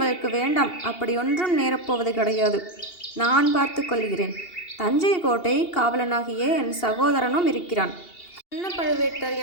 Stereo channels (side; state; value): right; late; 2.8 ms